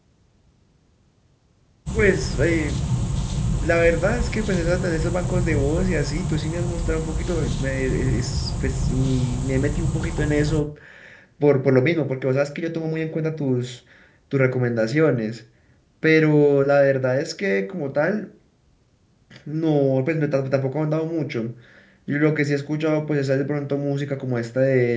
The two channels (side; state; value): both; identical; correlation 1.00